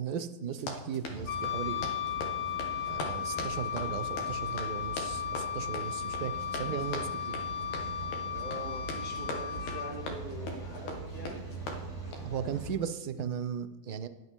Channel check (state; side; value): late; right; 12 ms